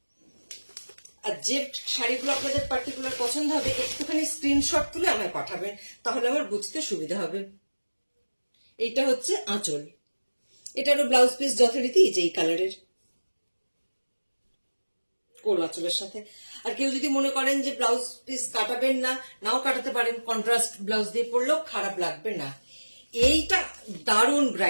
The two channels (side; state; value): both; inverted; correlation -1.00